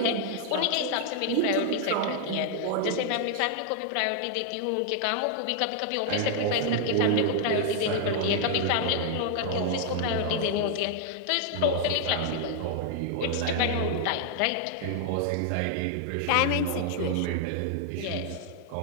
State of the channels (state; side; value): different; both; correlation 0.00